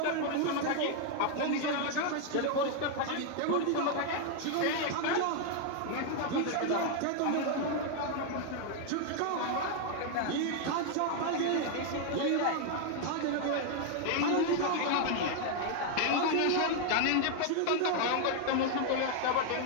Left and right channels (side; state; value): both; different; correlation 0.00